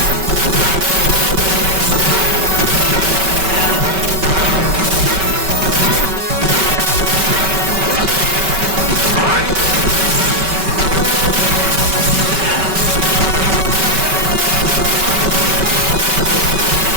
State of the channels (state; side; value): late; left; 5.2 ms